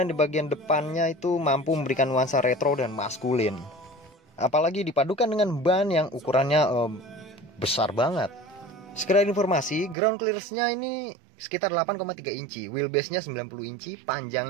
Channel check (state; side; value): drops out; left; at 10.0 s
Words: di bagian depannya itu mampu memberikan nuansa retro dan maskulin. Apalagi dipadukan dengan ban yang ukurannya besar banget. Sekedar informasi, ground clearance-nya ini sekitar 8,3 inci, wheelbase-nya 90 inci,